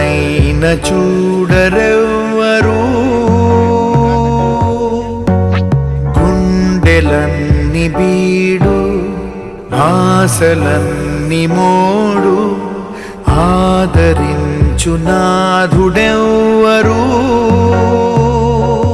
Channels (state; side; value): identical; both; correlation 1.00